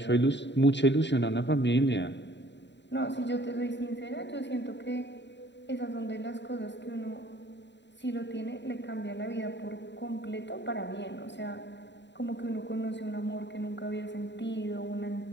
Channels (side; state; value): right; late; 0.52 ms